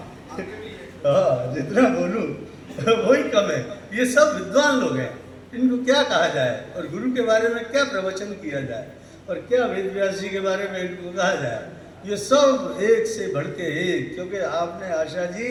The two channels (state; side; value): identical; both; correlation 1.00